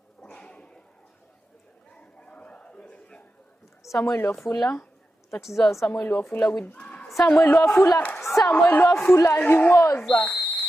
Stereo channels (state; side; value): normal; both; correlation 0.90